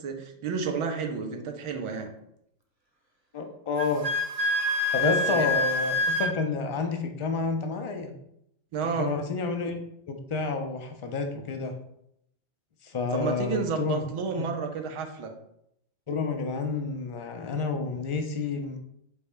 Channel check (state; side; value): late; left; 1.4 ms